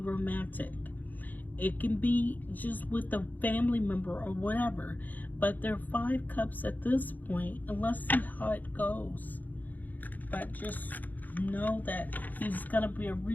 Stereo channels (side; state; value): right; late; 0.084 ms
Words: It can be just with a family member or whatever. But there are 5 cups at this point, and let's see how it goes. But just know that there's gonna be a